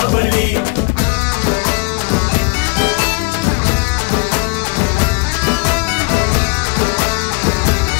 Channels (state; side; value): quieter; right; 29.4 dB